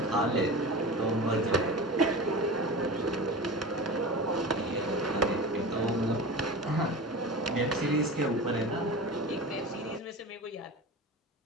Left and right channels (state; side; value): normal; both; correlation 0.31